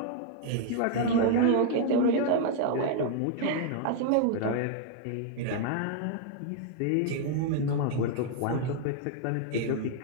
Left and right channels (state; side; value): different; both; correlation 0.00